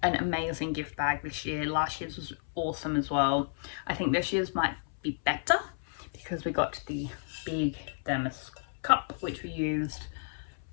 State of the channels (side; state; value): right; silent; 57 dB below the other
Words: an amazing gift bag this year. Last year's was awesome as well. I think this year's might be better because we got the big thermos cup, which we used